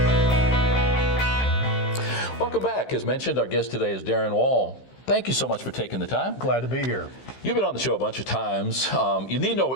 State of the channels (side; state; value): right; late; 15 ms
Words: Welcome back. As mentioned, our guest today is Darrin Wall. Thank you so much for taking the time. Glad to be here. You've been on the show a bunch of times. You need no